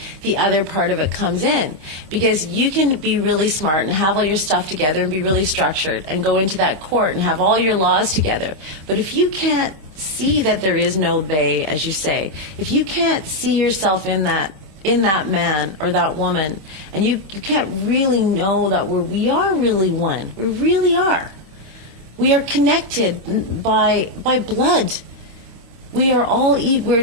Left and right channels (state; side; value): late; left; 26 ms